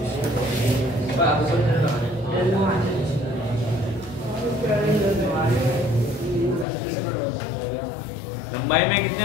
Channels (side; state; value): right; drops out; at 6.7 s